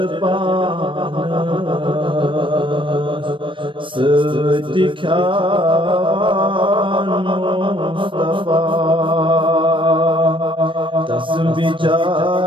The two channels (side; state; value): left; late; 0.25 ms